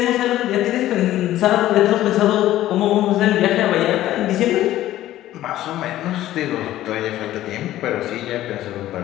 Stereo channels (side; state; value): right; quieter; 14.1 dB